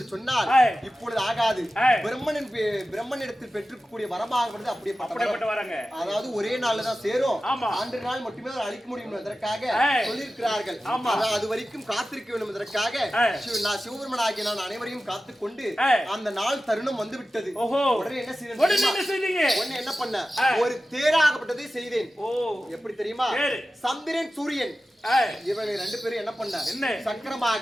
சொன்னால் இப்பொழுது ஆகாது. பிரம்மனிடத்தில் பெற்றுக்கூடிய வரமாக அப்படியே அதாவது ஒரே நாள்ல தான் சேரும். அன்று நாள் மட்டுமே அழிக்க முடியும் என்பதற்காக சொல்லியிருக்கிறார்கள். அது வரைக்கும் காத்திருக்க வேண்டும் என்பதற்காக நான் சிவபெருமனாகிய நான் அனைவரையும் காத்துக் கொண்டு அந்த நாள் தருணம் வந்து விட்டது. உடனே என்ன செய்தீங்க? உடனே என்ன பண்ண? ஒரு தேராகப்பட்டதை செய்தேன். எப்படி தெரியுமா? சந்திரன் சூரியன் இவங்க 2 பேரும் என்ன பண்ண?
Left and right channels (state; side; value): normal; both; correlation 0.94